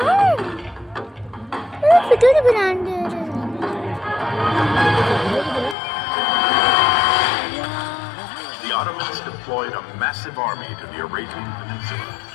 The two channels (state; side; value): drops out; right; at 5.8 s